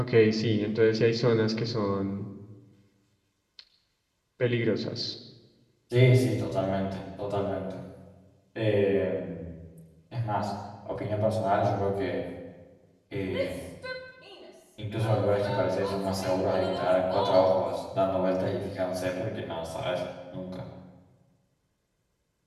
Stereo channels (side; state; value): both; identical; correlation 1.00